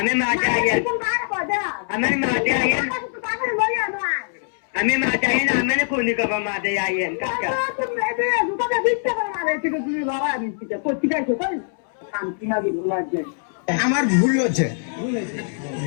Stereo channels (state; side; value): silent; right; 64 dB below the other